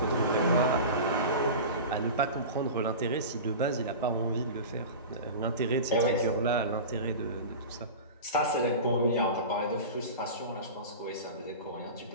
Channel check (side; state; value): both; inverted; correlation -0.30